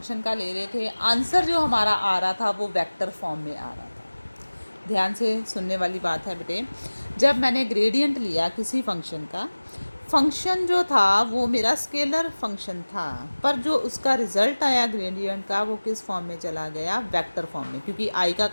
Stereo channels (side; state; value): both; inverted; correlation -1.00